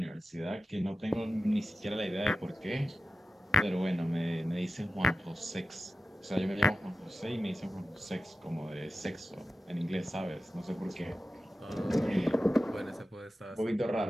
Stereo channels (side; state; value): both; normal; correlation 0.93